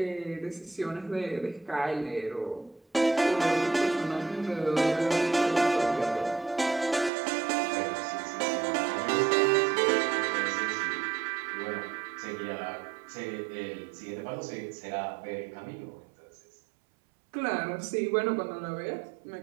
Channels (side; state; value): left; drops out; at 7.1 s